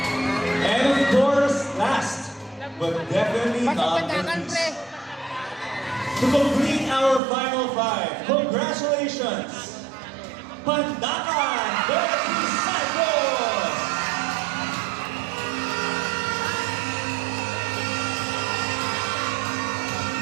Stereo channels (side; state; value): left; drops out; at 7.2 s